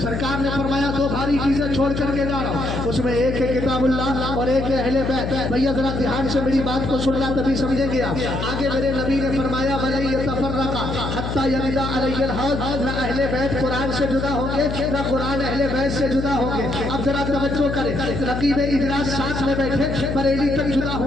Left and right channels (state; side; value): noise; left; hum, 4 dB below the sound